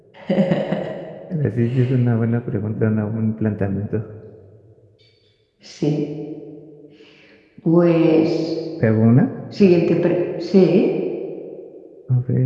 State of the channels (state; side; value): identical; both; correlation 1.00